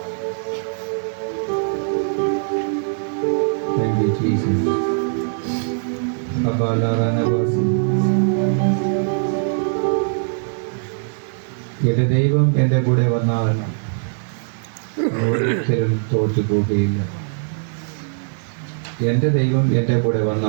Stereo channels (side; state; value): left; silent; digital silence